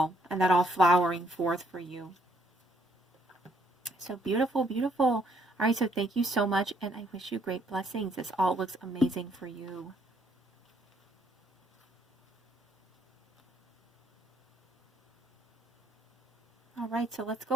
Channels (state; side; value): normal; both; correlation 0.69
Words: And that all flowering forth for you. So beautiful, beautiful. All right, so thank you so much, and I wish you great blessings. This all looks amazing for you. All right, so let's